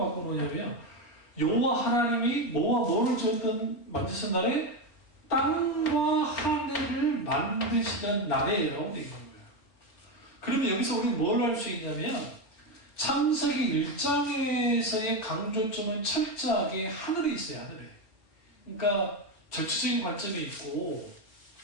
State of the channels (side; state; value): right; late; 4.3 ms